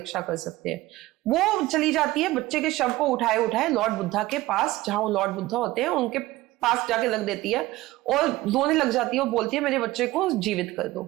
कर सकते हैं। वो चली जाती है, बच्चे के शव को उठाए लॉर्ड बुद्धा के पास, जहां वो लॉर्ड बुद्धा होते हैं उनके पास जाके रख देती है, और रोने लग जाती है और बोलती है मेरे बच्चे को जीवित कर दो।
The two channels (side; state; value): left; quieter; 18.1 dB